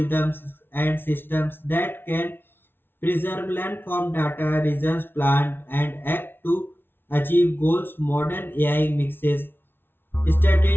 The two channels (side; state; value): right; late; 0.11 ms